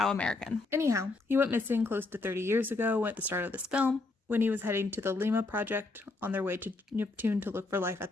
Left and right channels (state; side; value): quieter; right; 3.4 dB